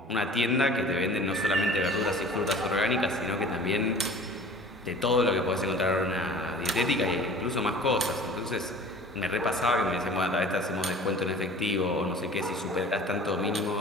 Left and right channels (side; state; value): both; normal; correlation 0.44